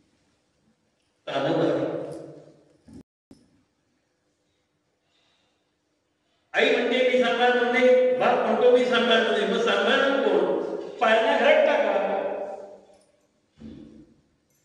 आई म्हणते मी सांभाळ म्हणते, बाप म्हणतो मी सांभाळ म्हणते. मग सांभाळणार कोण? पाळण्या घरात टाका.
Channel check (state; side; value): identical; both; correlation 1.00